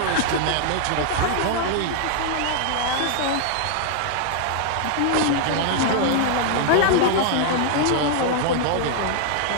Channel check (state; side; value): different; both; correlation 0.00